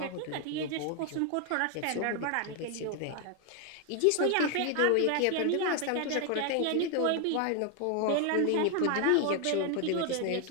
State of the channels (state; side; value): different; both; correlation 0.01